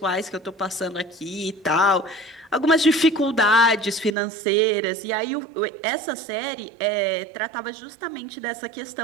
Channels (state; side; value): drops out; left; at 4.2 s